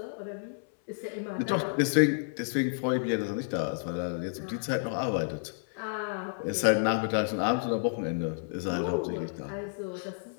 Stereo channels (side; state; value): right; silent; 57 dB below the other